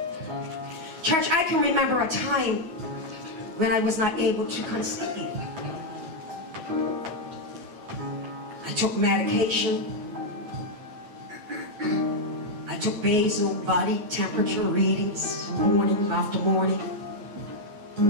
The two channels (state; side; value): late; left; 9.3 ms